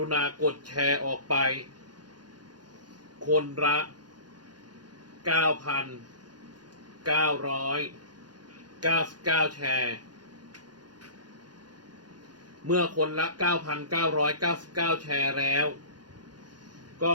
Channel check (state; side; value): late; left; 0.70 ms